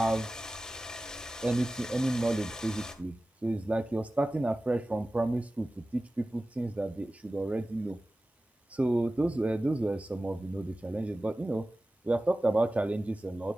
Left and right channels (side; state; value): both; normal; correlation 0.96